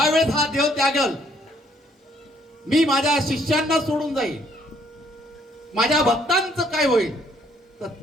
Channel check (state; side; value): normal; both; correlation 0.65